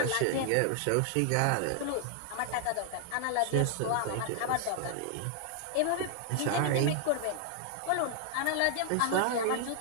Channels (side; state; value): both; different; correlation 0.00